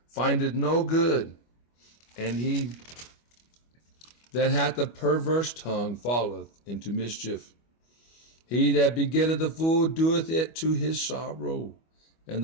findeth no good, and he that hath a perverse tongue falleth into mischief. He that begetteth a fool doeth it to his sorrow, and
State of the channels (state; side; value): late; right; 25 ms